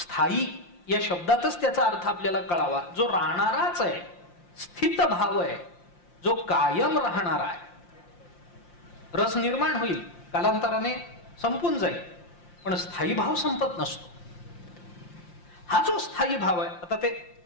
या शब्दातच त्याचा अर्थ आपल्याला कळावा, जो राहणाराच आहे, स्थित भाव आहे, जो कायम राहणार आहे. रस निर्माण होईल, कालांतराने संपून जाईल, पण स्थायी भाव संपत नसतो. हा जो स्थायी भाव आहे, आता ते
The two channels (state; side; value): late; right; 5.7 ms